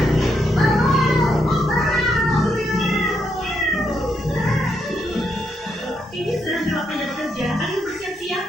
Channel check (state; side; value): normal; both; correlation 0.78